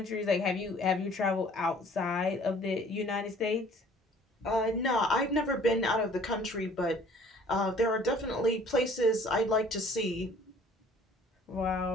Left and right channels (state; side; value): normal; both; correlation 0.54